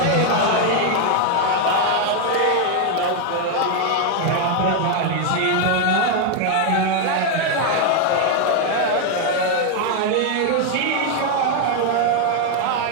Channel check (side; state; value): both; different; correlation 0.01